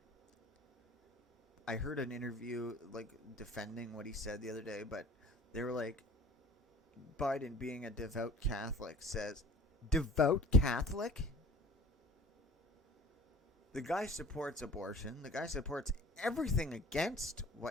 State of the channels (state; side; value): normal; both; correlation 0.47